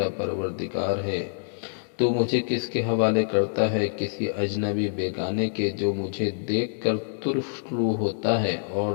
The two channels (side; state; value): right; silent; digital silence